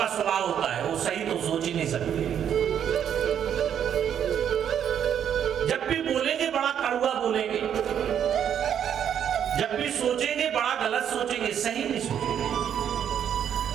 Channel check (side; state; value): left; quieter; 9.1 dB